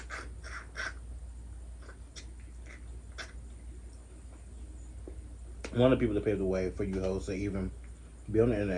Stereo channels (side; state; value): both; identical; correlation 1.00